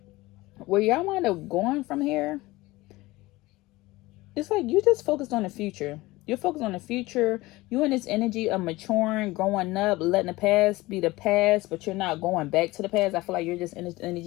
where y'all wind up going from here, it's like you just focused on the future. You're focused on the future. You in this energy of maturing, growing up, letting the past be the past, but you're not going back to the past. I feel like you're just in this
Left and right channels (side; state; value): right; quieter; 19.9 dB